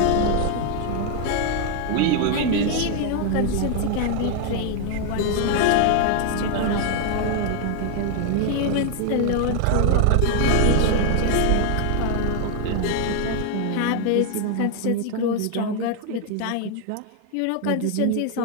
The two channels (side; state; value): both; different; correlation 0.00